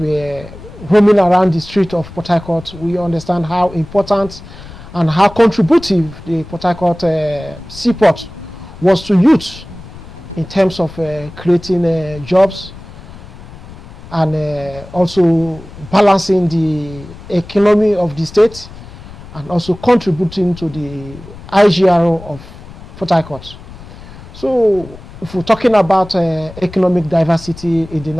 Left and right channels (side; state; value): left; noise; rumble, 17 dB below the sound